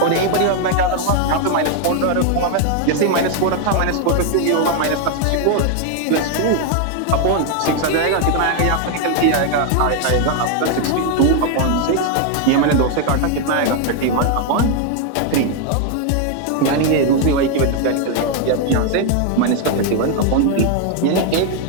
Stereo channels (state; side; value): different; both; correlation 0.01